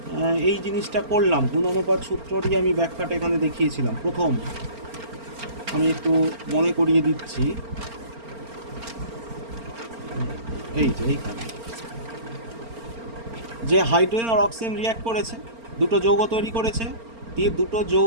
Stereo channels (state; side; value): late; left; 4.4 ms